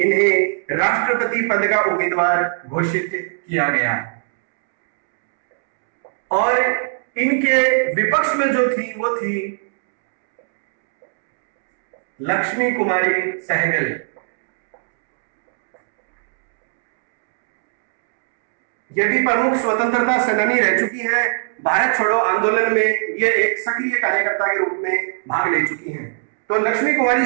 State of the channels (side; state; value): left; silent; 67 dB below the other